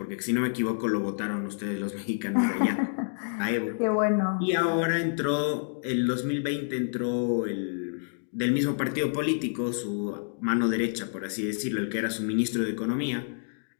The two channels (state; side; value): silent; right; digital silence